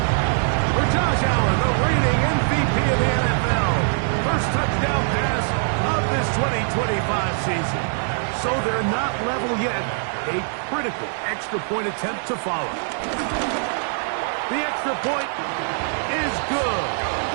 For Josh Allen, the reigning MVP of the NFL. First touchdown pass of this 2025 season. So they're not level yet. A critical extra point attempt to follow. The extra point is good.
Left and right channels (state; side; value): silent; left; 64 dB below the other